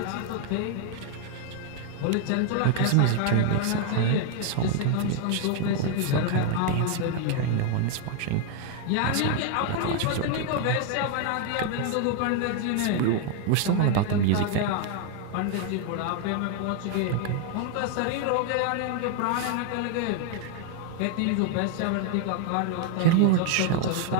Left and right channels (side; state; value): both; different; correlation 0.01